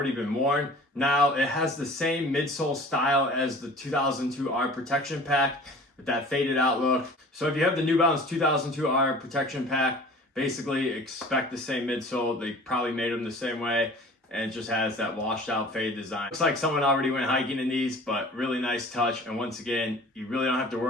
been worn. Now it has the same midsole style as the 2002R protection pack with that faded out look. So if you have the New Balance 2002R protection pack, basically expect the same midsole. They probably made them the same way, and it just has that washed out fade design. Looks like someone already went hiking in these, but really nice touch. And once again, you really don't have to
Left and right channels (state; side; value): normal; both; correlation 0.44